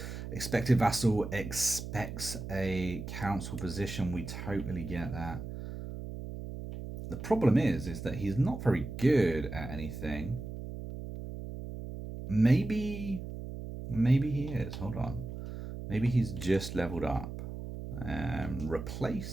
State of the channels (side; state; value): right; noise; hum, 8 dB below the sound